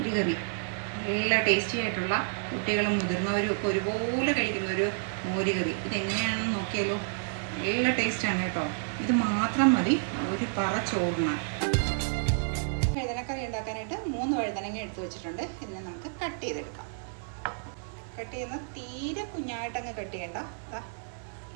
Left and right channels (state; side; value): silent; left; 58 dB below the other